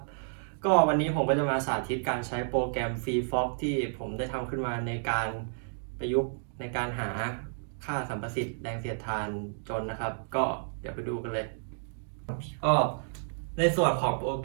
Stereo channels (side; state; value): left; silent; digital silence